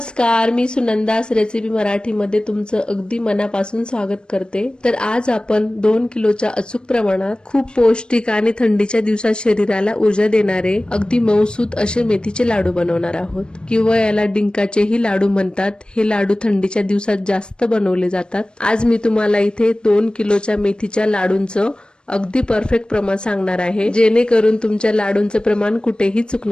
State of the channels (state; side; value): late; right; 0.052 ms